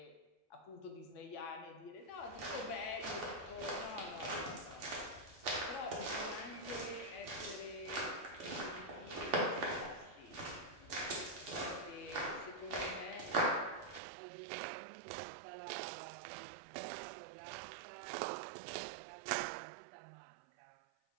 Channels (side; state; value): left; drops out; at 14.0 s